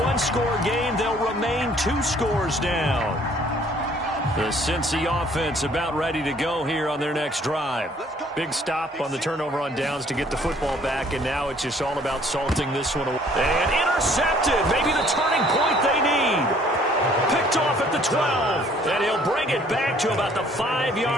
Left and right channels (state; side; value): normal; both; correlation 0.59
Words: 1-score game, they'll remain 2 scores down. The Cincy offense about ready to go here on their next drive. Big stop on the turnover on downs to get the football back, and now it's just all about salting this one away. And intercepted, maybe the turning point they need. Picked off at the 12, and he'll bring it back to about the